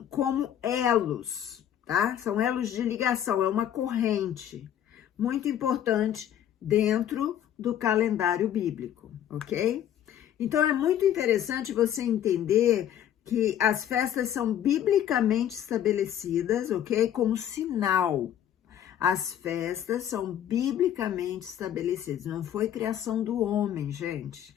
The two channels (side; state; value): right; quieter; 10.5 dB